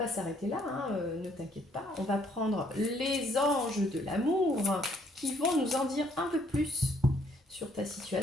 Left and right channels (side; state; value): both; normal; correlation 0.66